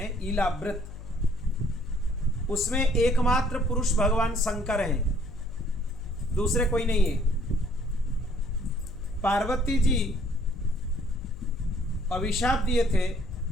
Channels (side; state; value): left; noise; hum, 13 dB below the sound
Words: इलावृत, उसमें एकमात्र पुरुष भगवान शंकर हैं, दूसरे कोई नहीं है। पार्वती जी अभिशाप दिए थे